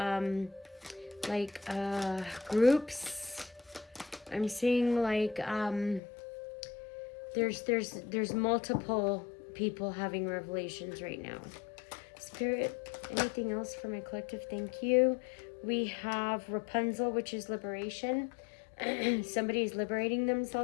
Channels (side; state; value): right; drops out; at 6.0 s